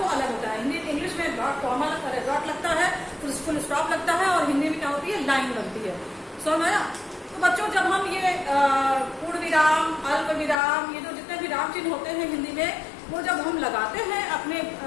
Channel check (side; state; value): right; drops out; at 10.6 s